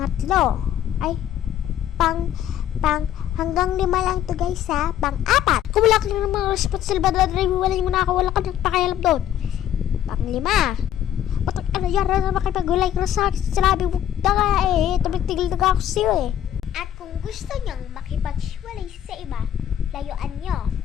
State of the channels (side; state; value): right; quieter; 10.7 dB